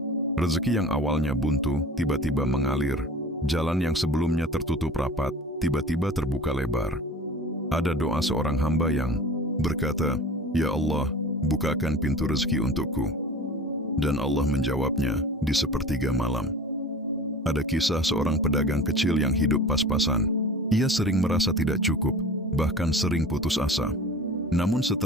Rezeki yang awalnya buntu, tiba-tiba mengalir. Jalan yang sebelumnya tertutup rapat, tiba-tiba terbuka lebar. Ada doa seorang hamba yang berkata, "Ya Allah, bukakan pintu rezeki untukku." Dan Allah menjawabnya di sepertiga malam. Ada kisah seorang pedagang kecil yang hidup pas-pasan. Ia sering merasa tidak cukup, bahkan sering putus asa. Namun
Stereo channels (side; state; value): both; normal; correlation 0.38